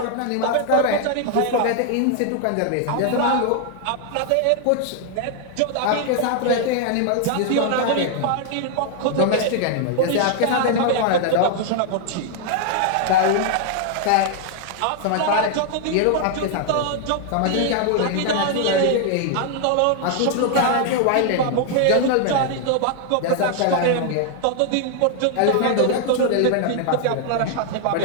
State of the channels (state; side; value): different; both; correlation 0.00